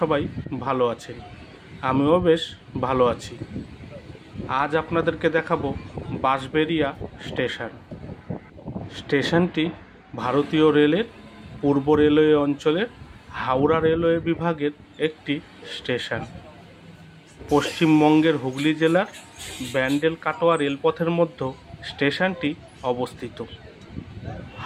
সবাই ভালো আছেন, আমিও বেশ ভালো আছি। আজ আপনাদেরকে দেখাবো বাঁশবেড়িয়া স্টেশন। স্টেশনটি ভারতীয় রেলের পূর্ব রেলওয়ে অঞ্চলের হাওড়া রেলওয়ে বিভাগের একটি স্টেশন। পশ্চিমবঙ্গের হুগলি জেলার ব্যান্ডেল কাটোয়া রেলপথের মধ্যে স্টেশনটি অবস্থিত।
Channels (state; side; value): identical; both; correlation 1.00